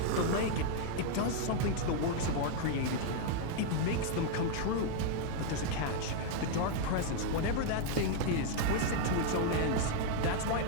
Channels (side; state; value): both; different; correlation 0.00